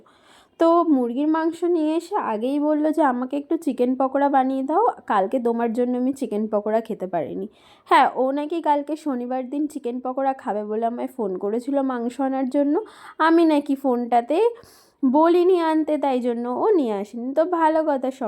তো মুরগির মাংস নিয়ে এসে আগেই বললো যে আমাকে একটু চিকেন পকোড়া বানিয়ে দাও, কালকে তোমার জন্য আমি চিকেন পকোড়া খেতে পারিনি। হ্যাঁ, ও নাকি কালকে শনিবার দিন চিকেন পকোড়া খাবে বলে আমায় ফোন করেছিল মাংস আনার জন্য। আমি নাকি ফোনটাতে বলিনি আনতে, তাই জন্য ও নিয়ে আসেনি। তো ভালো কথা,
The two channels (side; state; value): both; identical; correlation 1.00